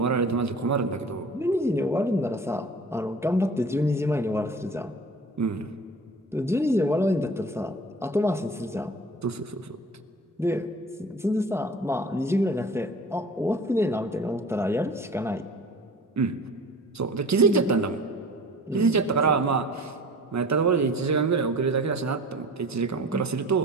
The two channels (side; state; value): both; normal; correlation 0.43